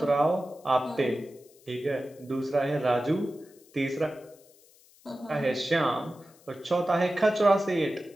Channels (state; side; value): noise; left; hiss, 28 dB below the sound